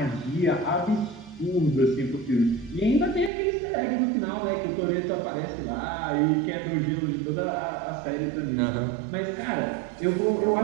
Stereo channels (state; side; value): drops out; left; at 3.3 s